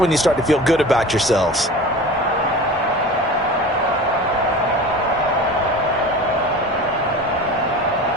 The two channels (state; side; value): normal; both; correlation 0.36